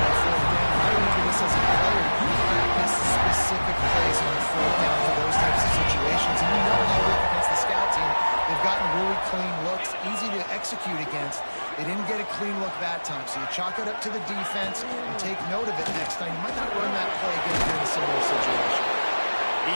alert to the defense and take note of it next time. You might not run that play again in a similar situation. He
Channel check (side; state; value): both; inverted; correlation -1.00